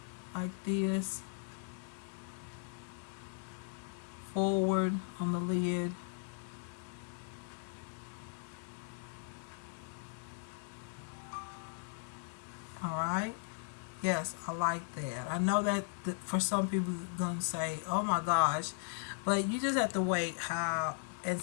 like this, forward on the lid. All right. Yes, I like that. I know that for some people gonna say, "Oh my gosh," but you just have to wait how and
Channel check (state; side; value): silent; right; 53 dB below the other